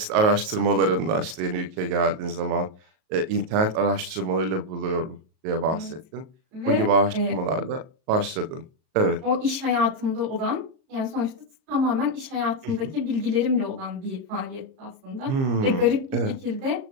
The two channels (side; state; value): left; late; 38 ms